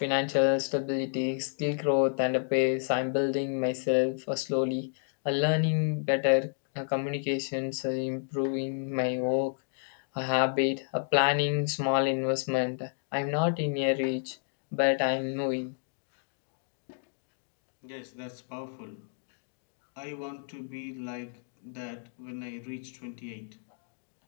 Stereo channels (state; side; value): silent; right; digital silence